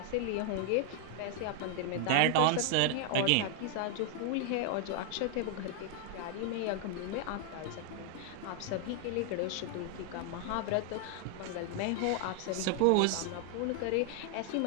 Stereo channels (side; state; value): both; different; correlation 0.00